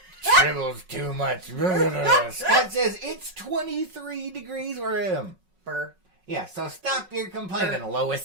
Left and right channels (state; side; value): late; left; 5.4 ms